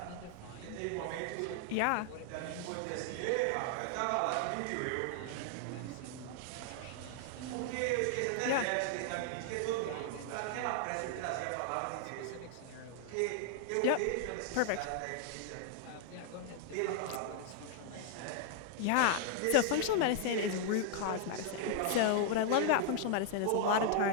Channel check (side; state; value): both; different; correlation 0.00